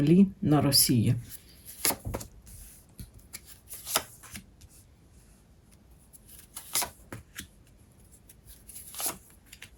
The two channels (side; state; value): both; identical; correlation 1.00